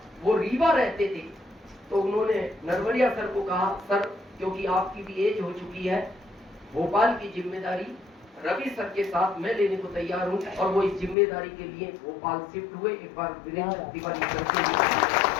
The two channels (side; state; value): right; drops out; at 11.2 s